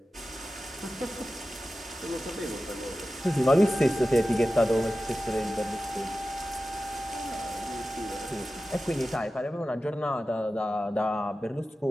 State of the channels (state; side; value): normal; both; correlation 0.94